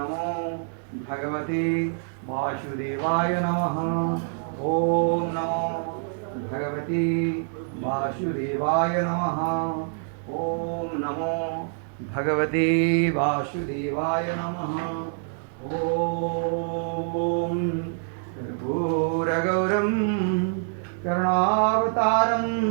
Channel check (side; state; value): left; silent; digital silence